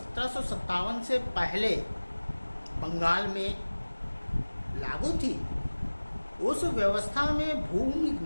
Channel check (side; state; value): both; inverted; correlation -1.00